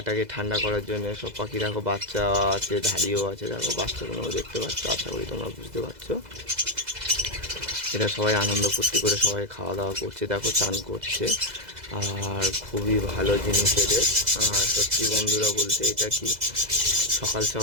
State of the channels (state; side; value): late; left; 2.0 ms